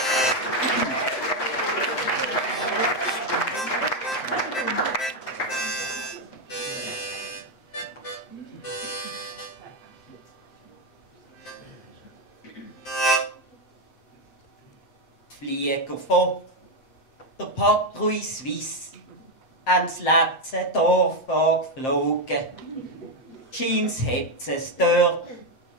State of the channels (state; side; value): late; right; 7.6 ms